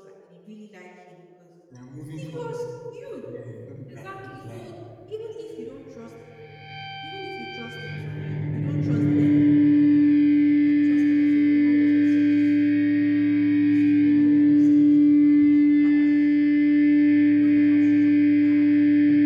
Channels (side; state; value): both; identical; correlation 1.00